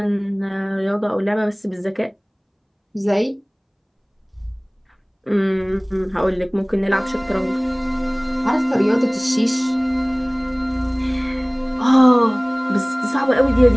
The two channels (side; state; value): both; identical; correlation 1.00